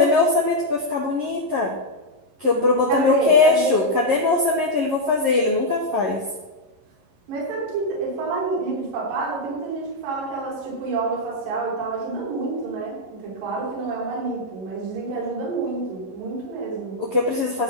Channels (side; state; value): left; late; 11 ms